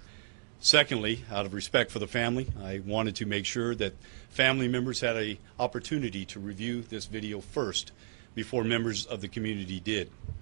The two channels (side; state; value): left; silent; digital silence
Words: Secondly, out of respect for the family, I wanted to make sure that family members had an opportunity to review this video first before members of the community did.